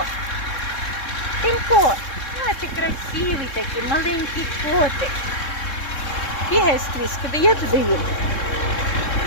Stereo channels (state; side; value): late; right; 3.7 ms